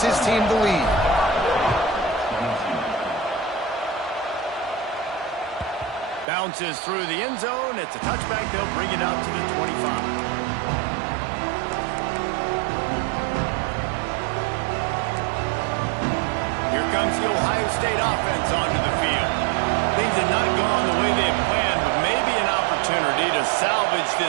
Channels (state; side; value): drops out; left; at 6.2 s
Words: his team the lead. Bounces through the end zone. It's a touchback. They'll bring it out to the 25. Here comes the Ohio State offense onto the field. Things have not gone the way they had planned, but maybe an opportunity to salvage